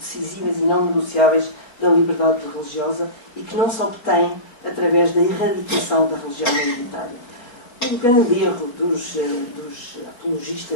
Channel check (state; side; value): late; right; 4.3 ms